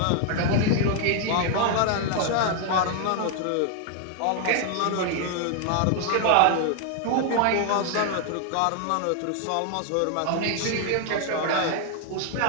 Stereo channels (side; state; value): both; different; correlation 0.00